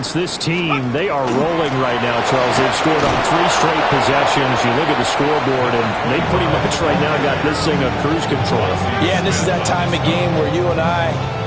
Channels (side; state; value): both; identical; correlation 1.00